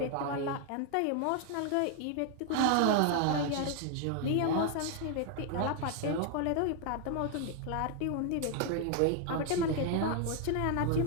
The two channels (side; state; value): both; different; correlation 0.00